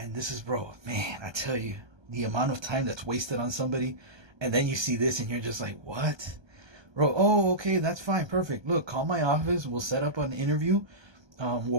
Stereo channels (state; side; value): late; left; 1.3 ms